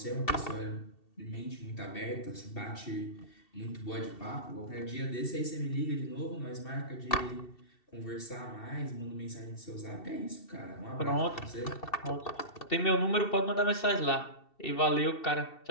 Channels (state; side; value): late; right; 2.7 ms